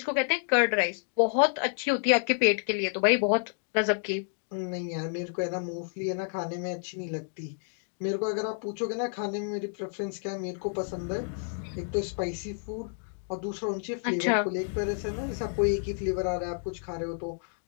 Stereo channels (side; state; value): right; silent; 58 dB below the other